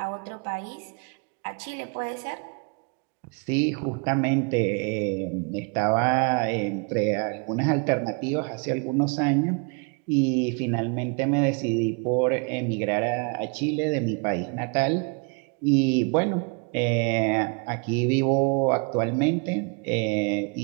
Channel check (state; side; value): quieter; left; 35.1 dB